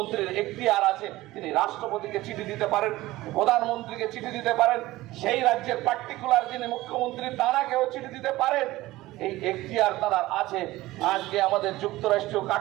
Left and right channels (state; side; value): quieter; left; 17.8 dB